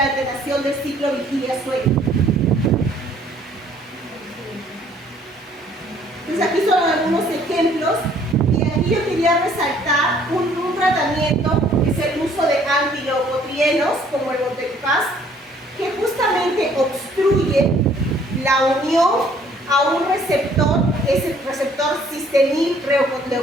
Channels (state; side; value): normal; both; correlation 0.60